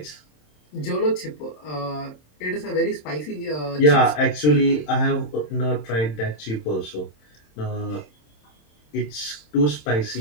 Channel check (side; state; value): right; late; 27 ms